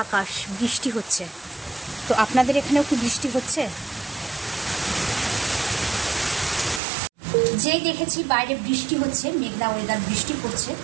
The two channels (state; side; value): drops out; left; at 6.8 s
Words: আকাশ, বৃষ্টি হচ্ছে। তো আপনাদের এখানেও কি বৃষ্টি হচ্ছে? যেই দেখেছি বাইরে বৃষ্টি হচ্ছে, মেঘলা ওয়েদার, বৃষ্টি পড়ছে,